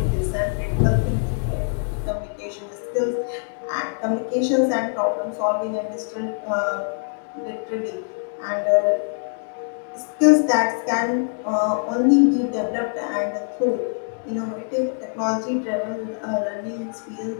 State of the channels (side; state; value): right; silent; digital silence